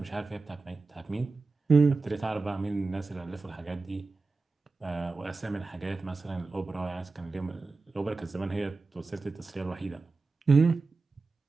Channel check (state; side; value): quieter; left; 3.8 dB